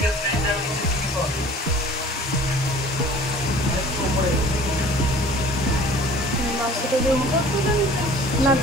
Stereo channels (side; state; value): both; normal; correlation 0.48